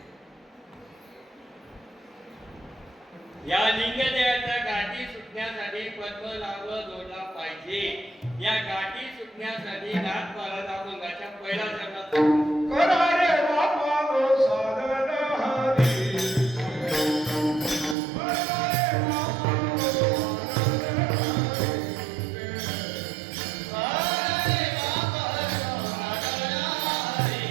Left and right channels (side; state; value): left; drops out; at 17.9 s